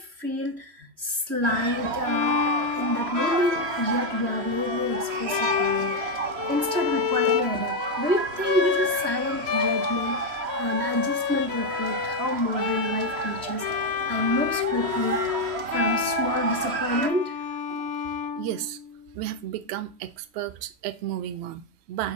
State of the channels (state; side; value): late; left; 3.1 ms